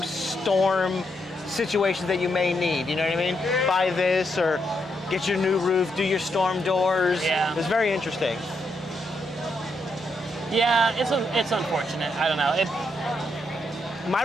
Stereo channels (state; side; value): normal; both; correlation 0.80